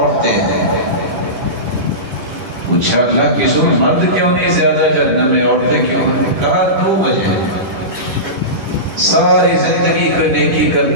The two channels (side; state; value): left; late; 9.9 ms